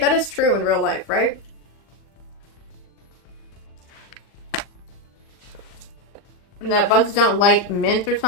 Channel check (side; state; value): right; late; 40 ms